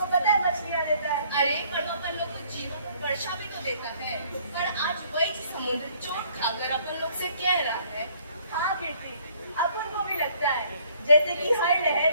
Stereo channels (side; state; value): both; inverted; correlation -0.61